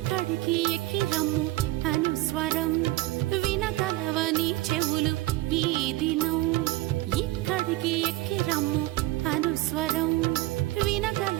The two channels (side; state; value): left; quieter; 18.2 dB